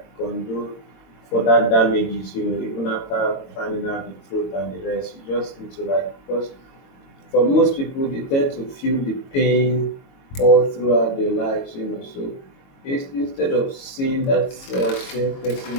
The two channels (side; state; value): right; late; 22 ms